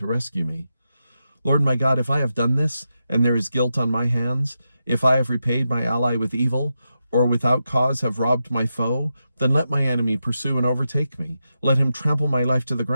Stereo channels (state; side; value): inverted; both; correlation -0.88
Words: rescue me. Lord my God, if I have done this, and there is guilt on my hands, if I have repaid my ally with evil, or without cause have robbed my foe, then let my enemy pursue and overtake me. Let him trample my life to the